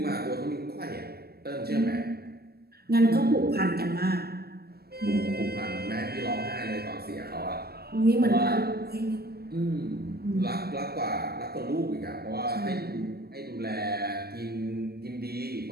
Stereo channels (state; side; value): late; left; 0.46 ms